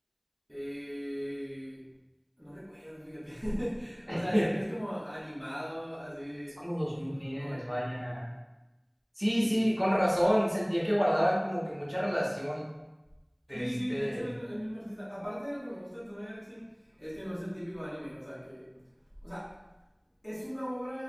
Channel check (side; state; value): both; identical; correlation 1.00